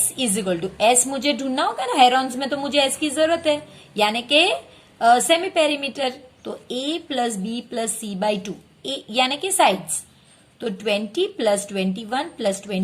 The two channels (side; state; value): both; identical; correlation 1.00